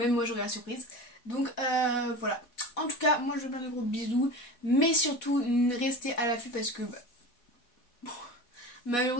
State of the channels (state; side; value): late; right; 4.1 ms